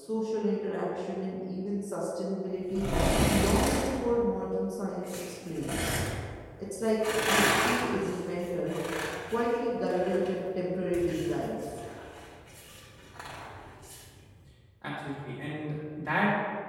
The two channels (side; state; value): both; identical; correlation 1.00